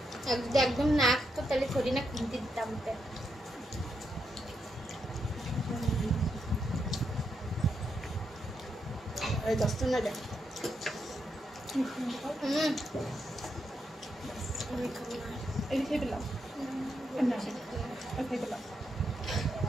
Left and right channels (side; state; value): both; normal; correlation 0.82